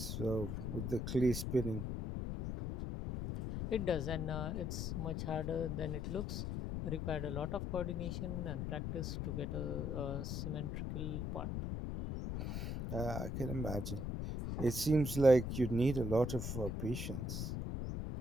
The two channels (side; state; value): left; noise; rumble, 2 dB below the sound